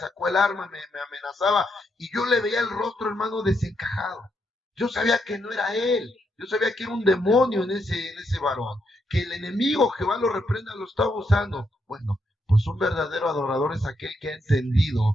el arma, me amenazaba y yo le veía el rostro, hermano, desencajado. Yo sabía que no era él, yo sabía que era un demonio en ese varón, que el enemigo, Jehová lo reprenda, lo estaba usando. Bueno, pues un verdadero adorador es aquel que ha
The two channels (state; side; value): normal; both; correlation 0.79